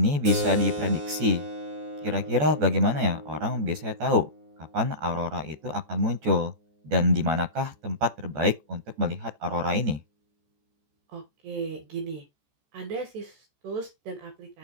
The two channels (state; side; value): late; left; 14 ms